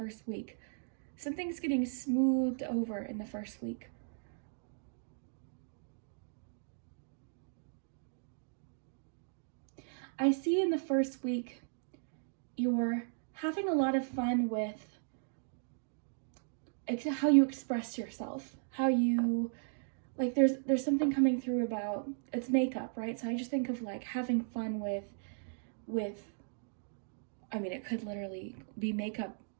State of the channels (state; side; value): silent; left; digital silence